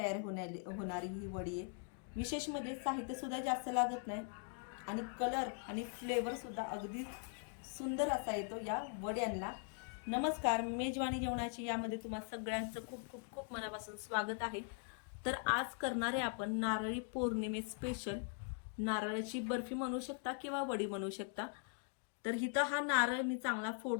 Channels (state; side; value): silent; right; 50 dB below the other